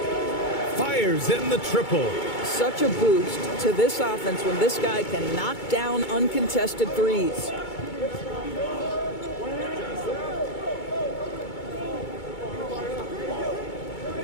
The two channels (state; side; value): late; right; 2.2 ms